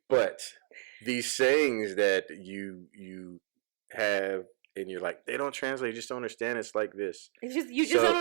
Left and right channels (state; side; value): silent; left; digital silence